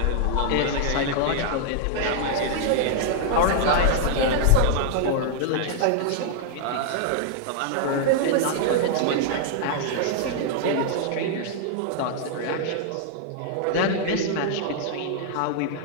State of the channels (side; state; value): both; different; correlation -0.01